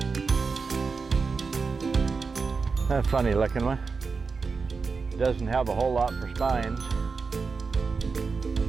A funny looking one. Doesn't have a whole lot for spines.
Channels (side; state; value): left; quieter; 4.7 dB